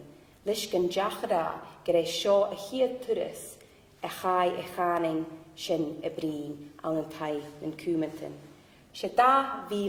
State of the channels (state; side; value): identical; both; correlation 1.00